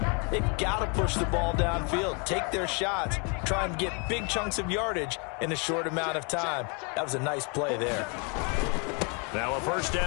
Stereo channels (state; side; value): quieter; right; 34.6 dB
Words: they've got to push the ball downfield, take their shots, try and get big chunks of yardage in a short amount of time. That was a nice play there. Now a first